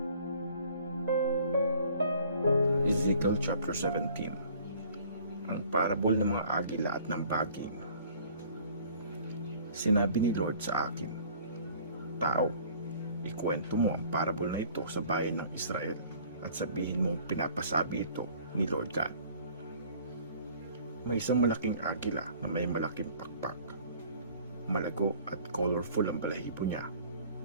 chapter 17. Ang parable ng mga agila at ng baging. Sinabi ni Lord sa akin, "Tao, ikwento mo ang parable na ito sa bayan ng Israel at sabihin mong pinapasabi ito ni Lord God. May isang malaking agila na may malaking pakpak. Malago at colorful ang balahibo niya.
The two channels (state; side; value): inverted; both; correlation -0.53